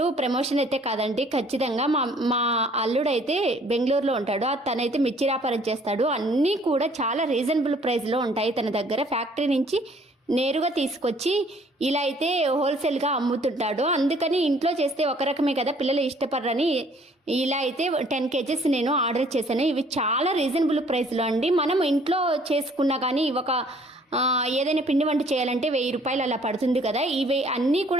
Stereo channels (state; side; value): normal; both; correlation 0.59